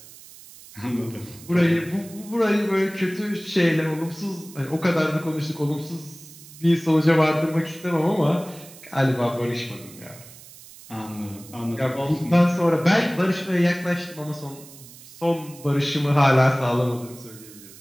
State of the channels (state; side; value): noise; right; hiss, 19 dB below the sound